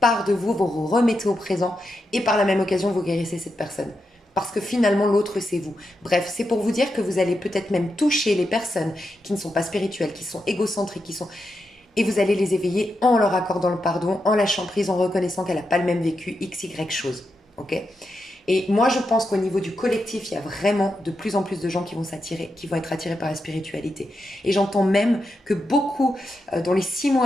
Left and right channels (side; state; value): both; normal; correlation 0.86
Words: de vous, vous remettez au présent et par la même occasion, vous guérissez cette personne. Parce que finalement, l'autre, c'est vous. Bref, c'est pour vous dire que vous allez peut-être même toucher les personnes qui ne sont pas spirituelles, qui sont égocentriques, et vous allez les éveiller en leur accordant le pardon, en lâchant prise, en reconnaissant qu'elle n'a pas le même vécu, x, y chose. Ok. Et moi, je pense qu'au niveau du collectif, il y a vraiment de plus en plus de gens qui vont s'attirer, qui vont être attirés par la spiritualité. Et j'entends même que beaucoup, dans les 6